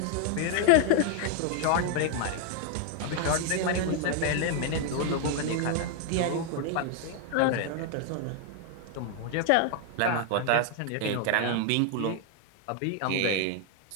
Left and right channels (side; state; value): both; different; correlation 0.00